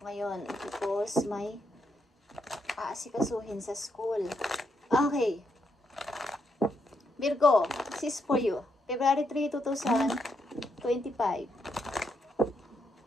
ngayon because may aasikasuhin sa school. Okay. Virgo, this is for you. February 3, 2025.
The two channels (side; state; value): both; normal; correlation 0.79